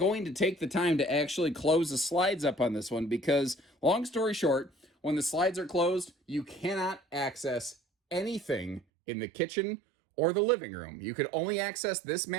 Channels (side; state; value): left; drops out; at 8.8 s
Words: to take the time to actually close the slides up on this one because, long story short, when the slides are closed, you cannot access anything in the kitchen or the living room. You could only access this